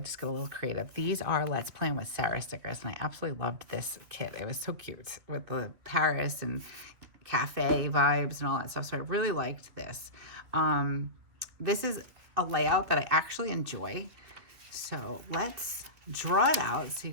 got a little creative. These are Let's Plan with Sarah stickers, and I absolutely loved this kit. It was so cute with the Paris and cafe vibes and all that stuff. So I really liked this. This is a layout that I actually enjoy. So let's draw it out so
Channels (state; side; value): late; left; 3.0 ms